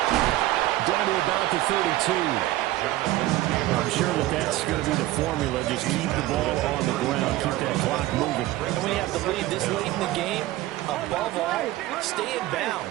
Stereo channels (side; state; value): left; quieter; 16.4 dB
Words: Down to about the 32. I'm sure that's going to be the formula. Just keep the ball on the ground. Keep that clock moving. And when you have the lead this late in the game, above all, stay in